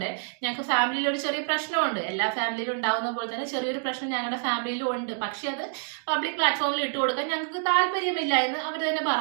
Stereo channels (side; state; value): left; silent; 59 dB below the other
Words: ഞങ്ങൾക്ക് ഫാമിലിയിൽ ഒരു ചെറിയ പ്രശ്നമുണ്ട്, എല്ലാ ഫാമിലിയിലും ഉണ്ടാവുന്ന പോലെ തന്നെ ചെറിയൊരു പ്രശ്നം ഞങ്ങളുടെ ഫാമിലിയിലും ഉണ്ട്, പക്ഷെ അത് പബ്ലിക് പ്ലാറ്റ്ഫോമിൽ ഇട്ട് കൊടുക്കാൻ ഞങ്ങൾക്ക് താല്പര്യമില്ല എന്ന് അവർ തന്നെ